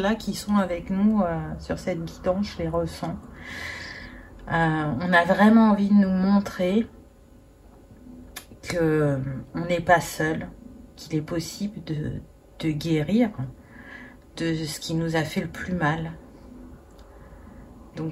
qui sont avec nous sur cette guidance, je les ressens. On a vraiment envie de nous montrer qu'on n'est pas seul, qu'il est possible de guérir de ce qui nous a fait le plus mal.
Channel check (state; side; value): identical; both; correlation 1.00